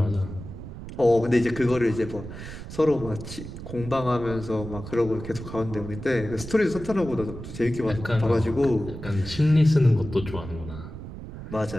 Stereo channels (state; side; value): noise; right; rumble, 11 dB below the sound